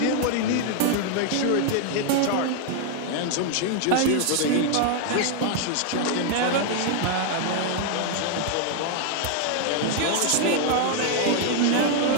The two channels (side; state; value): both; different; correlation 0.00